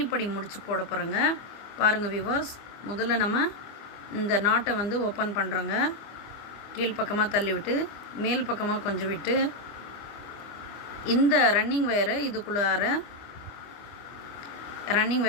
முடிச்சு போட போகிறேங்க. பாருங்கள் வியூவர்ஸ், முதல்ல நம்ம இந்த நாட்டை வந்து ஓப்பன் பண்ணுறோங்க. கீழ்ப்பக்கமாக தள்ளி விட்டு மேல் பக்கமாக கொஞ்சம் விட்டு இந்த ரன்னிங் வயரை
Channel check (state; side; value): late; right; 25 ms